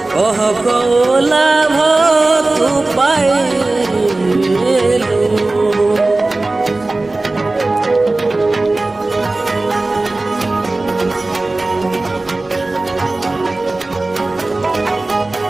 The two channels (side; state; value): left; quieter; 3.1 dB